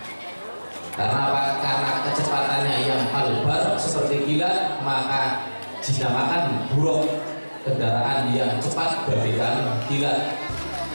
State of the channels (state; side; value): inverted; both; correlation -1.00